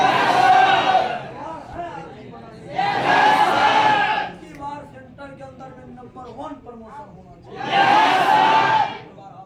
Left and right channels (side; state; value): both; identical; correlation 1.00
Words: की बार सेंटर के अंदर में नंबर 1 प्रमोशन होना चाहिए।